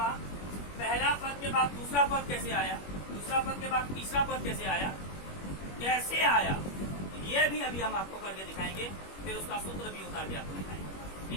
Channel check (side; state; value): right; late; 21 ms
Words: पहला पद के बाद दूसरा पद कैसे आया, दूसरा पद के बाद तीसरा पद कैसे आया, कैसे आया, ये भी अभी हम आपको करके दिखाएंगे। फिर उसका सूत्र भी उतार के आपको दिखाएंगे,